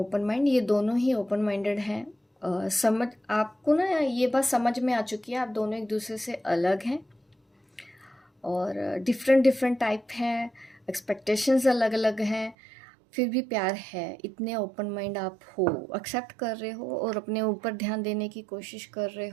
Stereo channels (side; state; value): left; drops out; at 12.6 s